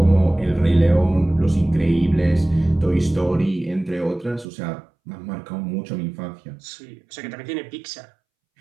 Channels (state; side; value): drops out; left; at 4.5 s